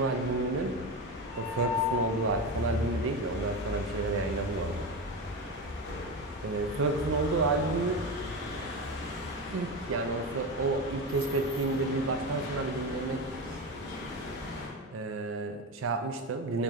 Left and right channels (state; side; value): normal; both; correlation 0.20